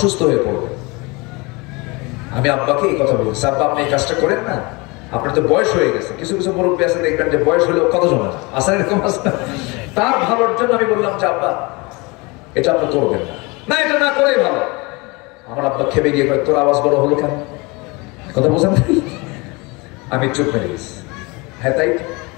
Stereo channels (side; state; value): right; quieter; 26.3 dB